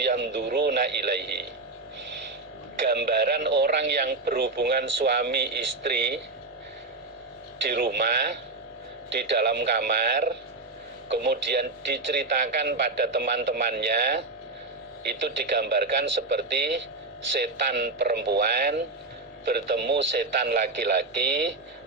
yanduruna ilaihi. Gambaran orang yang berhubungan suami istri di rumah, di dalam kamar, kemudian diceritakan pada teman-temannya, itu digambarkan seperti setan perempuan bertemu setan laki-laki,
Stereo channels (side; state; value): left; quieter; 3.3 dB